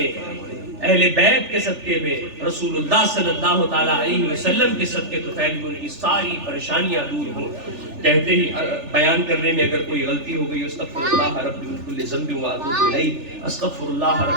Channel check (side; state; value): left; late; 3.4 ms